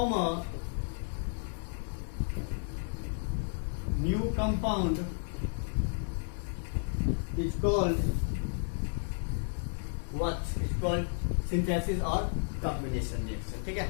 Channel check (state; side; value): silent; right; digital silence